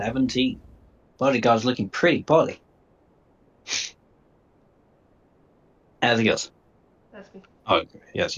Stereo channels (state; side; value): identical; both; correlation 1.00